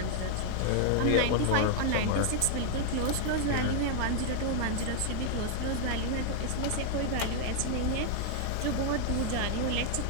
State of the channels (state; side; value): different; both; correlation -0.01